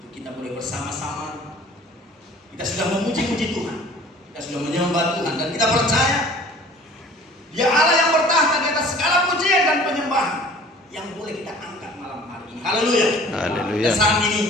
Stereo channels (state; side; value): normal; both; correlation 0.48